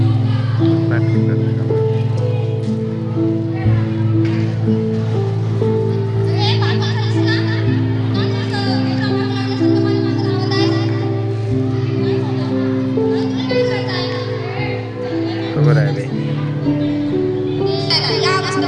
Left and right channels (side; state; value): both; identical; correlation 1.00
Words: बरोबर आहे बाई. या